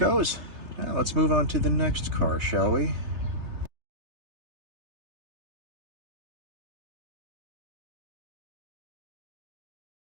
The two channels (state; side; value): late; left; 3.3 ms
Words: Now let's move on to the next car, shall we?